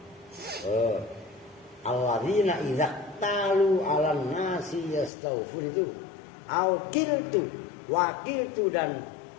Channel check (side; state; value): right; drops out; at 5.1 s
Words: Alladzina idza talu 'alan nasi yastawfiru. Au kiltu wakiltu dan